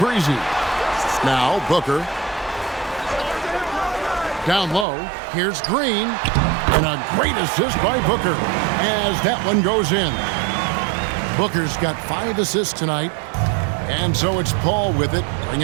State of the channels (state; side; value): drops out; left; at 4.9 s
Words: Now Booker. Down low. Here's Green. And a great assist by Booker as that one goes in. Booker's got 5 assists tonight. And so it's Paul with it,